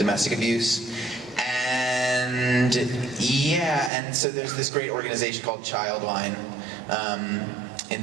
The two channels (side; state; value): left; drops out; at 3.9 s